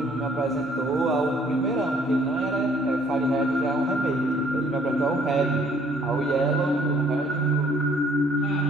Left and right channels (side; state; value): both; normal; correlation 0.61